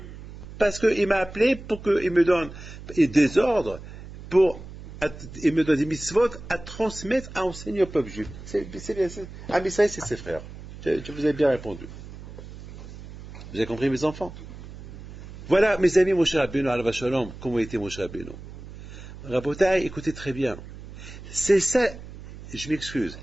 Parce qu'il m'a appelé pour qu'il me donne des ordres, il me donne des mitzvot à transmettre, à enseigner au peuple juif. Ah, mais ça, c'est ses frères. Je vous ai bien répondu. Vous avez compris, mes enfants? Voilà, mes amis, Moshe Rabbeinu, Alav Shalom, comment était Moshe Rabbeinu. Rabotai, écoutez très bien. C'est ça, je m'excuse,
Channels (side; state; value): right; noise; hum, 14 dB below the sound